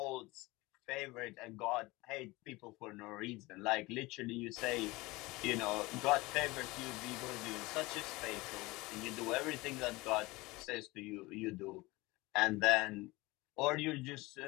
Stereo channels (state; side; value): quieter; right; 22.0 dB